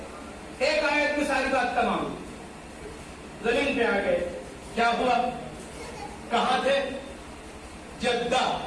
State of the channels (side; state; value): both; identical; correlation 1.00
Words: ایک آیت میں ساری بات تمام، زمین پہ آ گئے، کیا ہوا؟ کہاں تھے؟ جدہ،